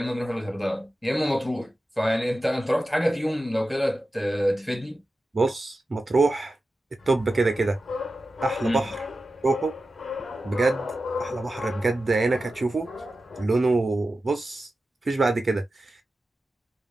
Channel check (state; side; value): normal; both; correlation 0.93